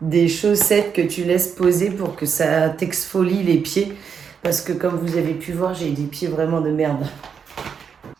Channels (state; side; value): quieter; left; 6.7 dB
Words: des chaussettes que tu laisses poser pour que ça t'exfolie les pieds. Parce que comme vous avez pu voir, j'ai des pieds vraiment de merde.